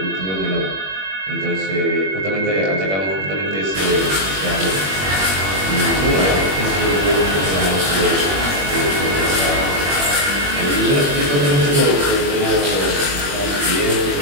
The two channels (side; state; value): left; late; 21 ms